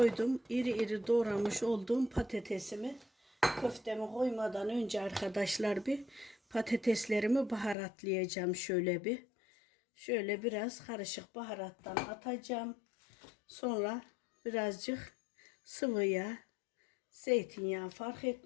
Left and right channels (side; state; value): right; drops out; at 7.8 s